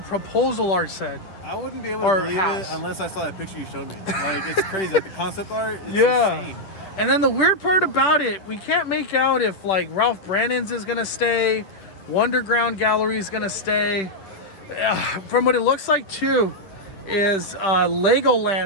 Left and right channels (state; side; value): late; right; 10 ms